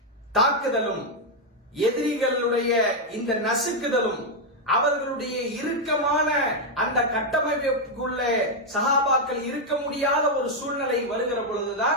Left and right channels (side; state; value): both; normal; correlation 0.01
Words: தாக்குதலும், எதிரிகளுடைய இந்த நசுக்குதலும், அவர்களுடைய இறுக்கமான அந்த கட்டமைப்புக்குள்ளே சஹாபாக்கள் இருக்க முடியாத ஒரு சூழ்நிலை வருகிற